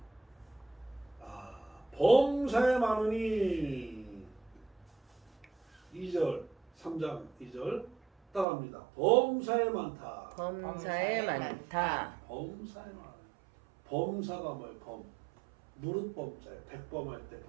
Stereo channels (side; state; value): left; drops out; at 8.5 s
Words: 범사에 많으니 2절 3장 2절 따라합니다. 범사에 많다. 범사에 많다. 범사에 많아요. 범사가 뭐예요? 범. 무릇 범자예요. 백범할 때